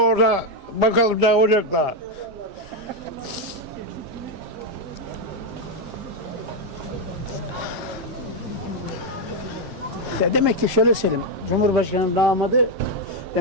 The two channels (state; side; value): late; left; 7.6 ms